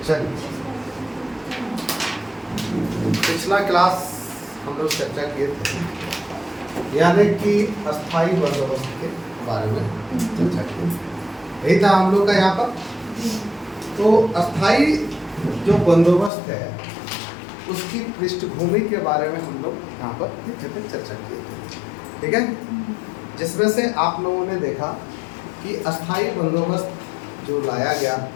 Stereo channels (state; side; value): drops out; right; at 16.3 s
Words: चलिए, पिछला क्लास हम लोग चर्चा किए थे यानी कि अस्थाई बंदोबस्त के बारे में चर्चा की, यही था हम लोग का यहाँ पर। तो अस्थाई जो बंदोबस्त है उसकी पृष्ठभूमि के बारे में हम लोग यहाँ पर चर्चा किए थे, ठीक है। जिसमें से आप लोगों ने देखा कि अस्थाई बंदोबस्त जो लाया गया,